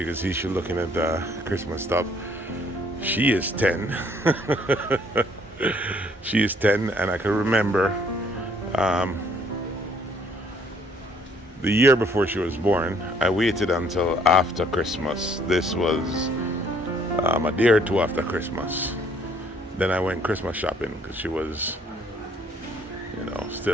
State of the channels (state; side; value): normal; both; correlation 0.63